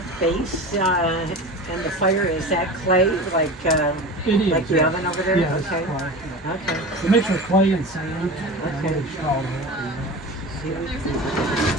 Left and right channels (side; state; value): both; normal; correlation 0.32